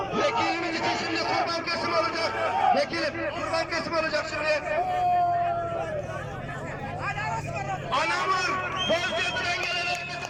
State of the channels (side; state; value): both; identical; correlation 1.00